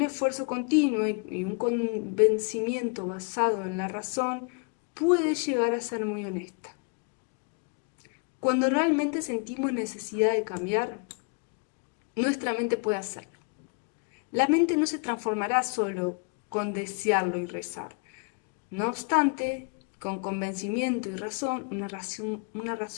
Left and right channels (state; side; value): quieter; right; 37.2 dB